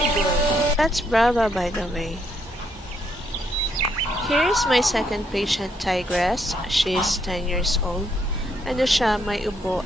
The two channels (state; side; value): normal; both; correlation 0.74